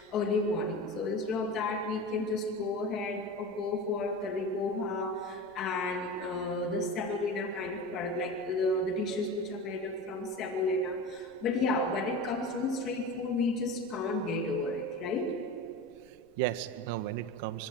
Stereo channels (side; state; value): right; noise; rumble, 29 dB below the sound